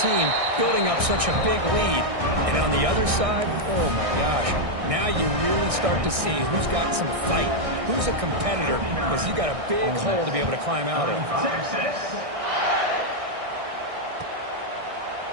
building up such a big lead. And on the other side, oh my gosh, now you really start to see who's got some fight, who's a competitor, because you got a big hole to be able to climb out of.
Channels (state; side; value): late; left; 1.6 ms